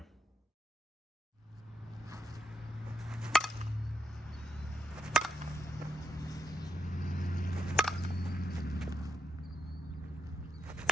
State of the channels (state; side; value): normal; both; correlation 0.80